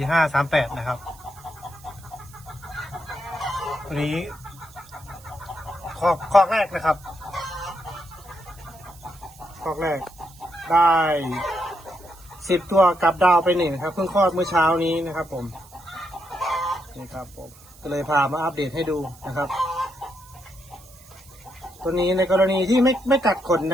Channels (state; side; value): noise; right; hiss, 23 dB below the sound